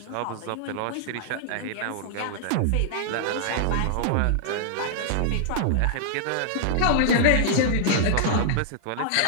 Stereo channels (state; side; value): different; both; correlation -0.01